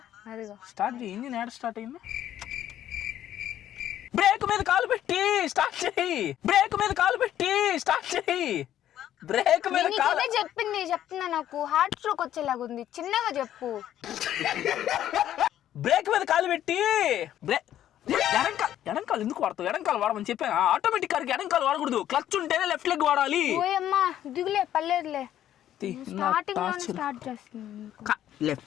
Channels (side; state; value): right; quieter; 11.6 dB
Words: చేయి. ఇంజిన్ యాడ్ స్టార్ట్ అయింది. బ్రేక్ మీద కాలు పెట్టి స్టార్ట్ చేయి. బ్రేక్ మీద కాలు చెప్తున్నా, నాకు హార్ట్ స్ట్రోక్ వచ్చేలాగా ఉంది. చిన్నగా చెప్పు. బ్రేక్ మీద కాలు పెట్టి ఎడంకాలు ఎందుకు వాడతావు? ఎడంకాలు వాడమని చెప్పాను. ఆటోమేటిక్ కార్కి ఎడంకాలు వాడకూడదు, క్లచ్ ఉంటేనే లెఫ్ట్ లెగ్ వాడాలి. ఓయమ్మా దిగులే, పర్లేదులే.